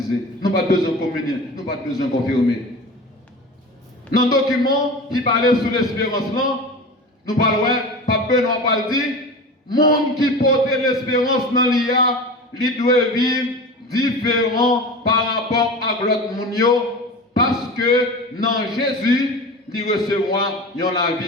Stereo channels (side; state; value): both; normal; correlation 0.32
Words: nous n'avons pas besoin de communier, nous n'avons pas besoin de confirmer. Dans le document qui parlait sur l'espérance là, nous parlons, pas besoin de dire, monde qui porte l'espérance dans l'IA, il doit vivre différent par rapport à l'autre monde, parce que dans Jésus, il recevra la